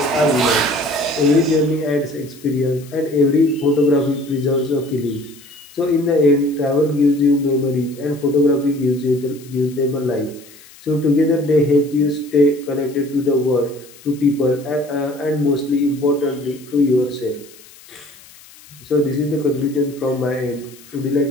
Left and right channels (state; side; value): noise; left; hiss, 23 dB below the sound